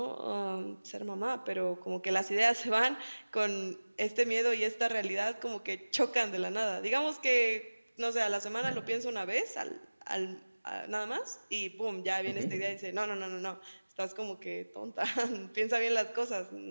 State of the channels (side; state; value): both; inverted; correlation -1.00